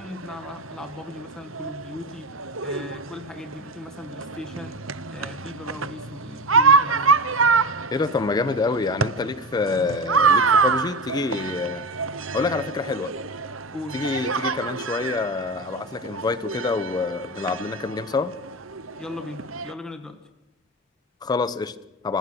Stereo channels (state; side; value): normal; both; correlation 0.23